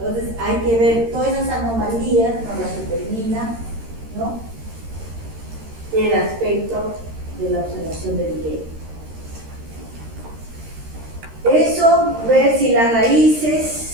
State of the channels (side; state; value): left; late; 13 ms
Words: hay que ver todas esas anomalías, nos las determina, ¿no?, el aspecto de la observación del diente. Eso, ver si las